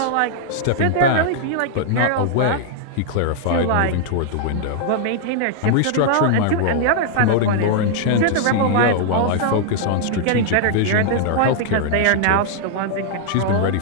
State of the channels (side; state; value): both; different; correlation -0.01